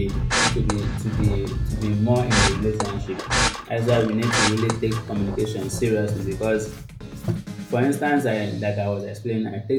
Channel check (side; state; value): both; identical; correlation 1.00